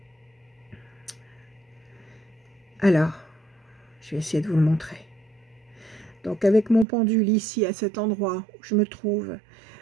Alors, je vais essayer de vous le montrer. Donc, avec mon pendule ici, à cet endroit où je me trouve,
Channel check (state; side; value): drops out; left; at 6.9 s